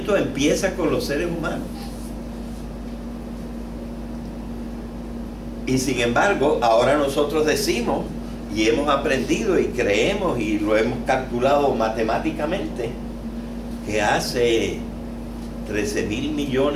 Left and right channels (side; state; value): both; identical; correlation 1.00